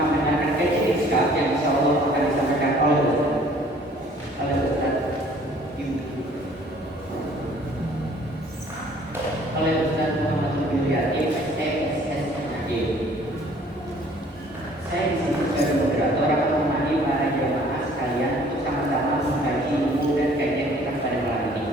kajian Iskak yang insya Allah akan disampaikan oleh Ustaz Muhammad Subriyati, SSSNAG. Saya di sini sebagai moderator akan menemani para jamaah sekalian untuk sama-sama mengkaji ilmu dan kajian kita pada malam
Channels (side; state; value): both; normal; correlation 0.55